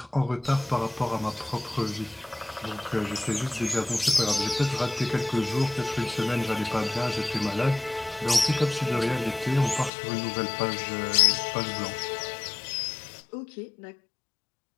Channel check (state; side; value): drops out; right; at 9.9 s